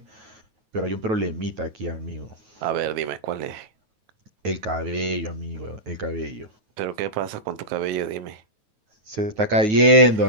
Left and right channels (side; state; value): left; late; 9.3 ms